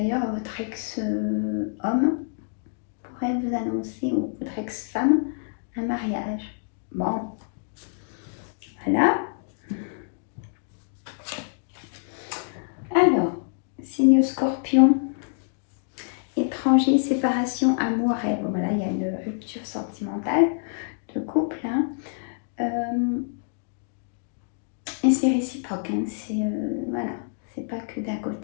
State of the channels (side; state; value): right; silent; digital silence